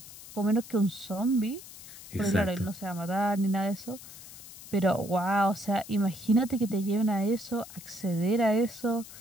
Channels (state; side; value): noise; left; hiss, 16 dB below the sound